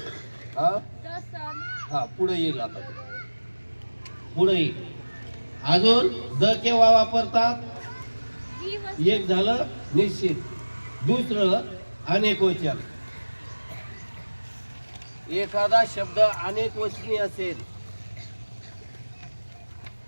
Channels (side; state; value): both; inverted; correlation -1.00